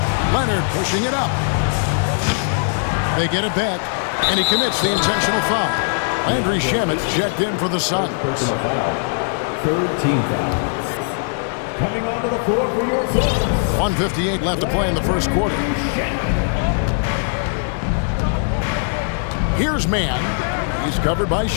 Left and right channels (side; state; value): right; silent; digital silence